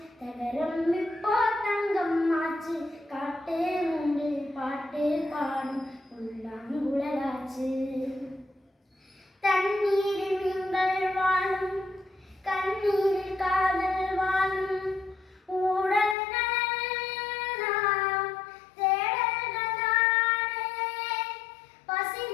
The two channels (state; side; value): drops out; right; at 16.2 s